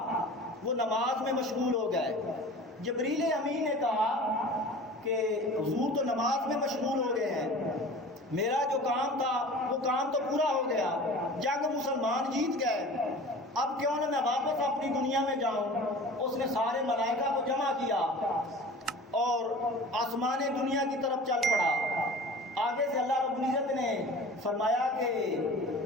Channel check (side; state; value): both; normal; correlation 0.40